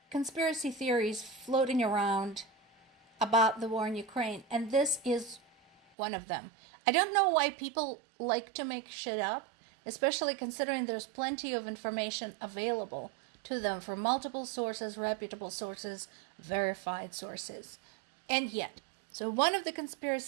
conspiracy theories floating around about the war in Ukraine, and this is one of them. I don't know why people like to make shit up, especially considering there's plenty of information available to them from multiple sources, reputable sources, verified sources. And yet, so one of the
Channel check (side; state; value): left; drops out; at 5.8 s